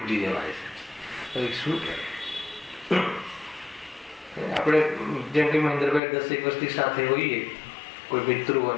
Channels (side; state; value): right; drops out; at 6.0 s